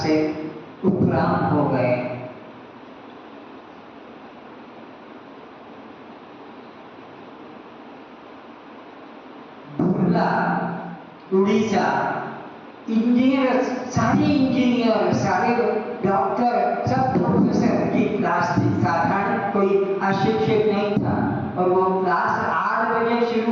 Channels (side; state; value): both; identical; correlation 1.00